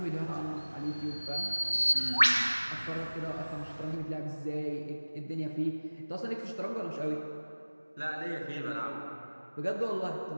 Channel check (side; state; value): both; inverted; correlation -1.00